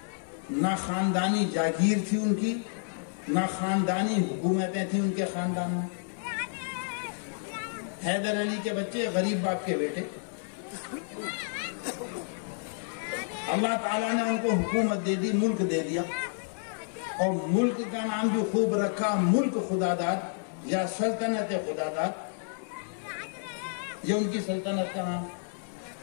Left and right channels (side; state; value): right; silent; 58 dB below the other